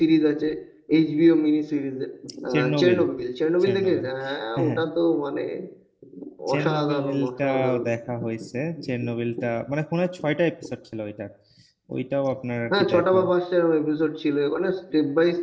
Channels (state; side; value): identical; both; correlation 1.00